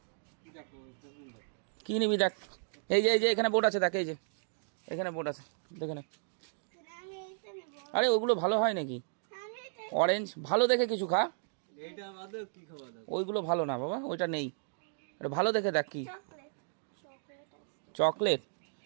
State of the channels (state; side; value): silent; left; digital silence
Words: কী নিবি দেখ, এই যে এখানে বোর্ড আছে, দেখ এই যে এখানে বোর্ড আছে, দেখে নে। আরে ওগুলো ভালো হয় নাকি? অরেঞ্জ ভালো দেখে কিছু খা, ওইগুলো ভালো না বাবা, ওইটা নেই। ভালো দেখে দেখ কি চকলেট